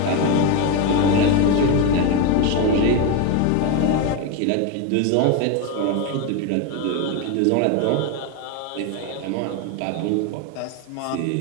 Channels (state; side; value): different; both; correlation 0.03